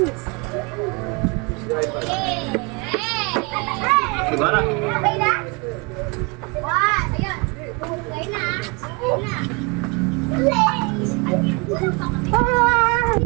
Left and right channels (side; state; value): left; quieter; 29.5 dB